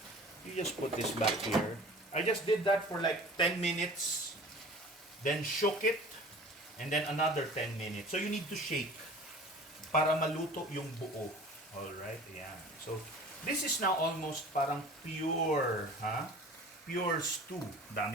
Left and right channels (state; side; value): normal; both; correlation 0.43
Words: You just put this back here. I just did that for like 10 minutes. Then shook it. And then another 10 minutes. So you need to shake para maluto yung buo. Alright? Yan. So this is now almost parang pure. pure stew.